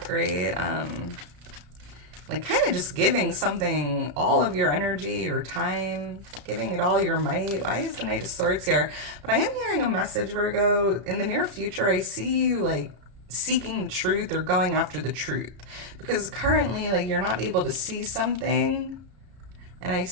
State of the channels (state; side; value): late; left; 33 ms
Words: right? Like kind of just giving something all of your energy, your time, giving it all your might. Why is the Knight of Swords here? But I am hearing a message, Virgo. In the near future, I see you like seeking the truth or going after the truth, because currently like you're not able to see something, and I